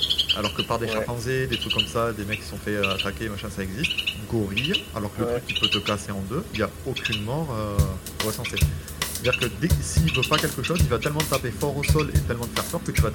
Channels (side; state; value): both; identical; correlation 1.00